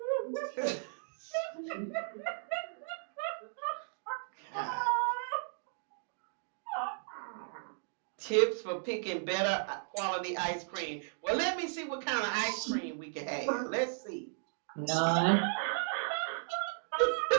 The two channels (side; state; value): left; silent; digital silence